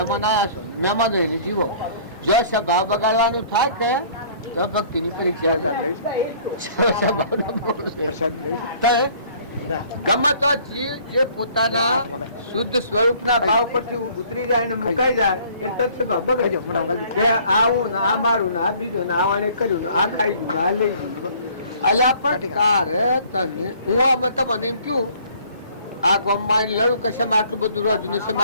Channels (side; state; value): both; inverted; correlation -0.55